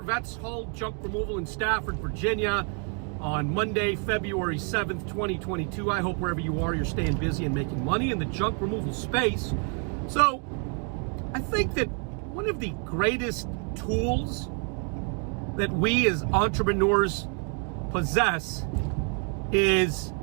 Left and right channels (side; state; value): left; quieter; 38.7 dB